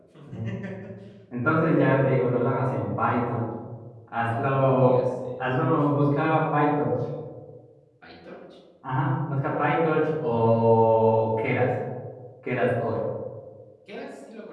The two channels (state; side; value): identical; both; correlation 1.00